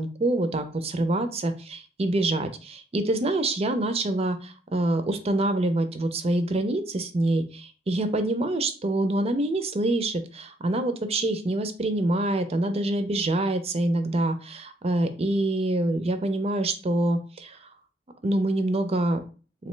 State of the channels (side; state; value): both; normal; correlation 0.70